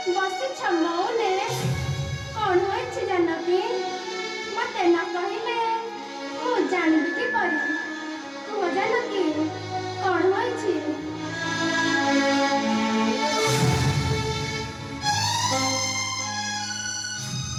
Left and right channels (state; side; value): identical; both; correlation 1.00